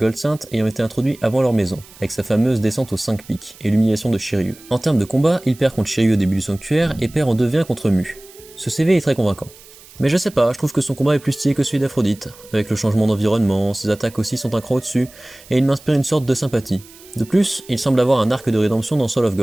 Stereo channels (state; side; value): noise; right; hiss, 22 dB below the sound